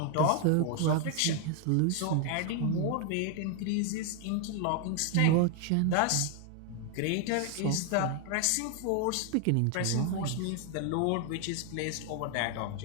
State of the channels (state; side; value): different; both; correlation 0.01